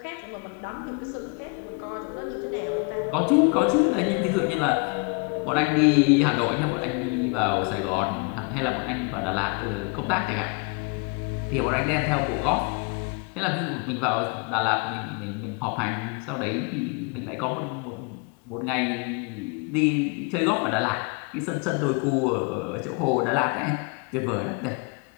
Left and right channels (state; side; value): quieter; right; 31.9 dB